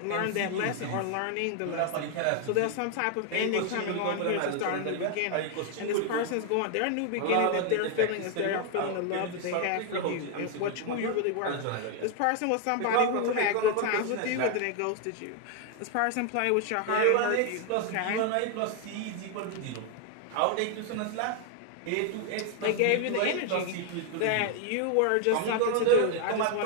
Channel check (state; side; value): different; both; correlation 0.00